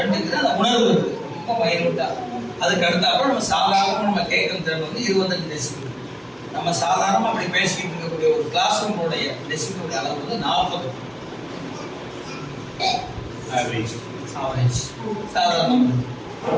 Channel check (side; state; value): both; identical; correlation 1.00